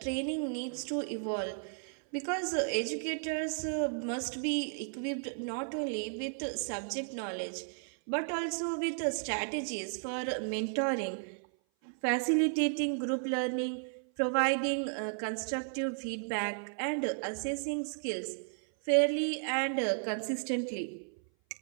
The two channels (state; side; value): silent; left; 55 dB below the other